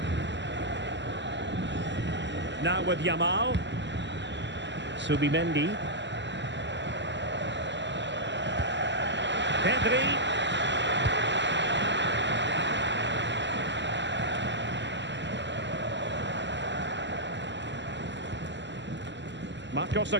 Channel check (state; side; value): late; left; 0.52 ms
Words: Now with Yamal. Subimendi. Pedri. Marcos